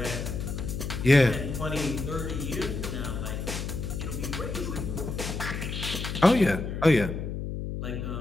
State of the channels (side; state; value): left; noise; hum, 4 dB below the sound